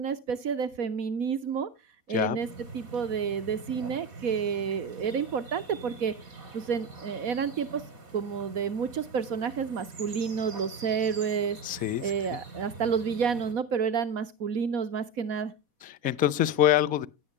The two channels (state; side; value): late; left; 4.1 ms